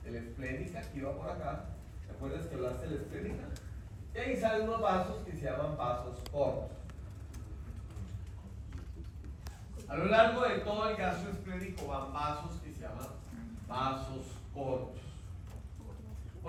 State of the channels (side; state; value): both; identical; correlation 1.00